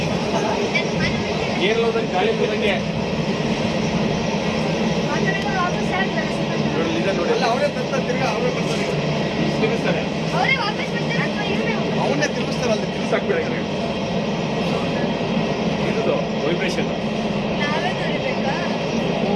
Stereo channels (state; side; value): identical; both; correlation 1.00